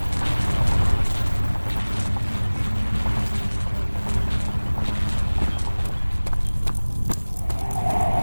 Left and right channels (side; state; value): both; inverted; correlation -1.00